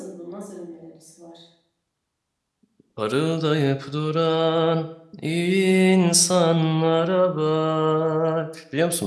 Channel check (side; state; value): both; identical; correlation 1.00